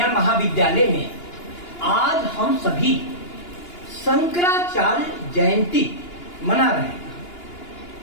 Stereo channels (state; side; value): late; right; 2.9 ms